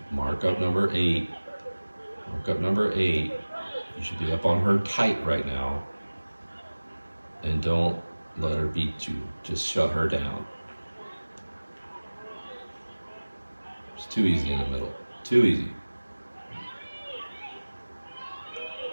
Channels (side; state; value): both; inverted; correlation -1.00